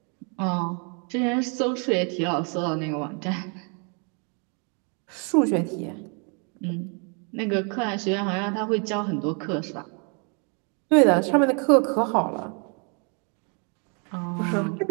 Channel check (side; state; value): left; quieter; 37.3 dB